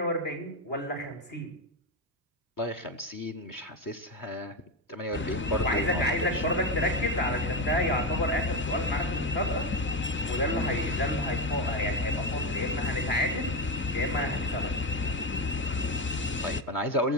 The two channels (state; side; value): normal; both; correlation 0.13